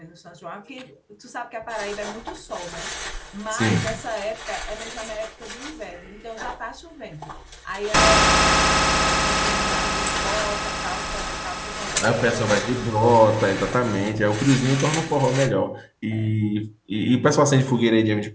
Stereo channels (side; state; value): both; identical; correlation 1.00